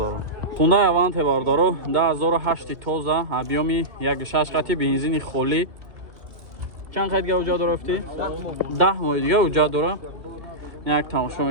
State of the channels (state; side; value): late; left; 2.2 ms